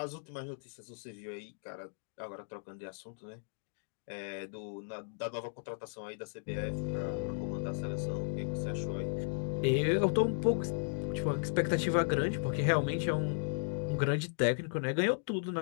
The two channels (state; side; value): silent; right; digital silence